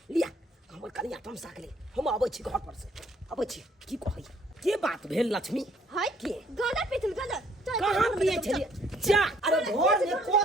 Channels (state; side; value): normal; both; correlation 0.63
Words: लिया हमर कनिया तमसा गेलै, हम आबै छी घर पर से आबै छी। की कहै के बात भेल लक्ष्मी? हाय के गोजे पीतल गोजे कहां पिए छलिए? जा अरे घर में